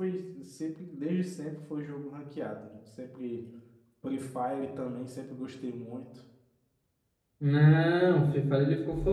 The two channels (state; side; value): identical; both; correlation 1.00